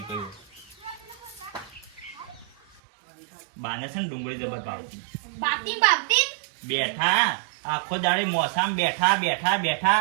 ગયો. બાને છે ને ડુંગળી જબર ભાવતી. બાપતી બેઠા આખો દાડે મોસામ બેઠા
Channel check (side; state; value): left; drops out; at 2.8 s